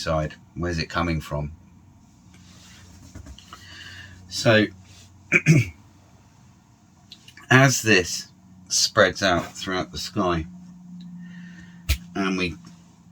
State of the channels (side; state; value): both; identical; correlation 1.00